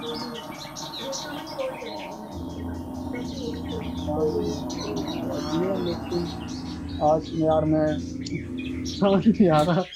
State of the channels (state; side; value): identical; both; correlation 1.00